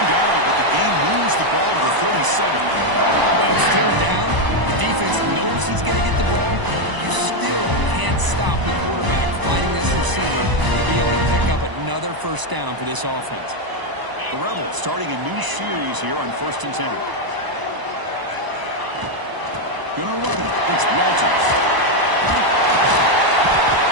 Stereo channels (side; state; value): left; late; 1.0 ms